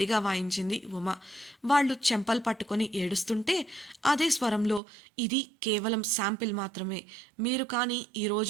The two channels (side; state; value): left; drops out; at 4.8 s